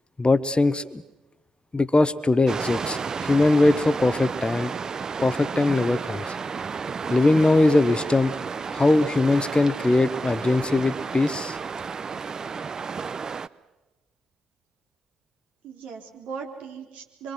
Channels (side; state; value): both; normal; correlation 0.93